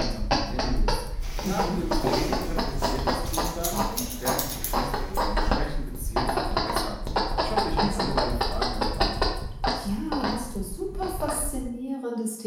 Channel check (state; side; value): identical; both; correlation 1.00